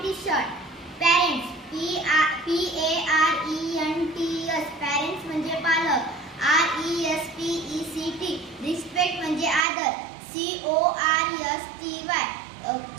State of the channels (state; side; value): drops out; left; at 9.7 s